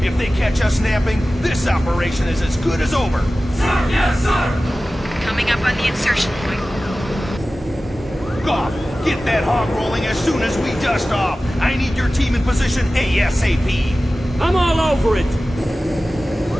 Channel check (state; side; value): normal; both; correlation 0.96